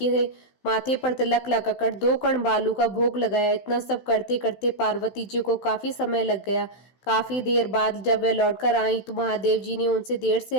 माथे पर तिलक लगाकर 2 कण बालू का भोग लगाया। इतना सब करते करते पार्वती जी को काफी समय लग गया। काफी देर बाद जब वे लौटकर आई तो महादेव जी ने उनसे देर से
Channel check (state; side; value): late; right; 16 ms